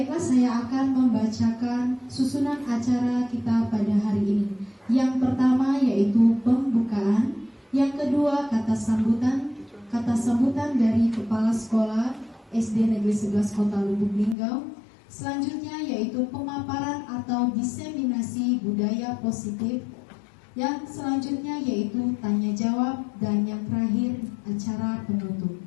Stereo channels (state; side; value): drops out; right; at 14.4 s